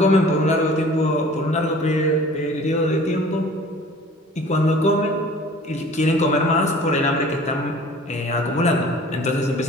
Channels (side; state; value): both; normal; correlation 0.47